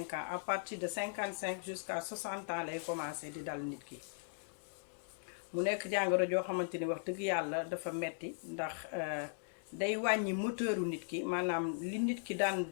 ans à partir de 55 jusqu'à 60 ans lay commencé di dal nit ki mu nekk jàngoro joo xamante ni wax dëgg yàlla dafa metti ndax day wàññi moteuru nit ki maanaam li nit ki daan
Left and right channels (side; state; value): right; silent; digital silence